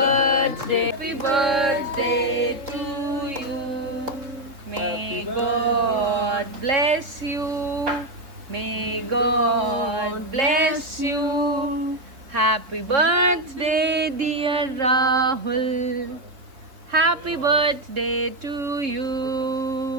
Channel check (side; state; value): left; late; 3.7 ms